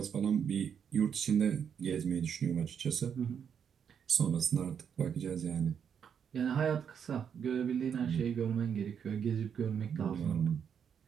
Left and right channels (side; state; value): left; quieter; 7.6 dB